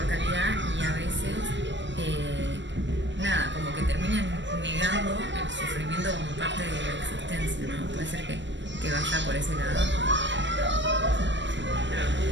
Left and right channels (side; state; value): left; late; 0.53 ms